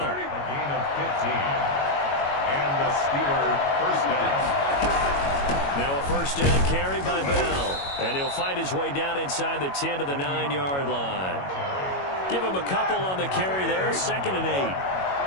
A gain of 15. And the Steeler 1st down. Now a 1st down carry by Bell. And he'll fight his way down inside the 10 to the 9-yard line. Give him a couple on the carry there. 2nd and 8.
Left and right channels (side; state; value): right; late; 21 ms